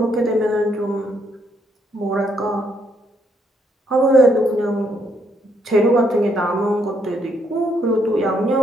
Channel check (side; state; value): both; normal; correlation 0.73